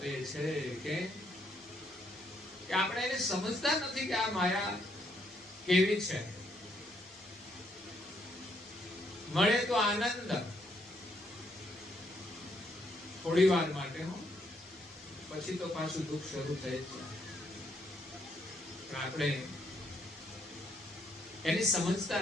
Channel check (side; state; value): both; normal; correlation 0.73